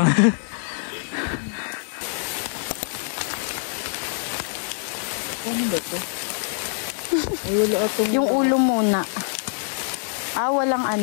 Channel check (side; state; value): right; silent; digital silence